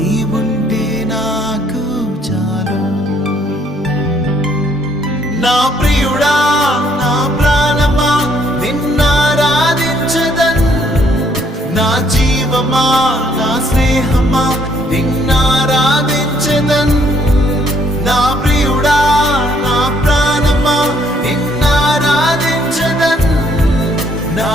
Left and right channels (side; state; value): both; normal; correlation 0.67